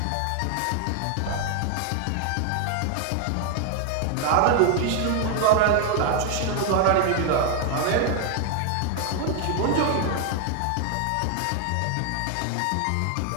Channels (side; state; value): both; different; correlation 0.00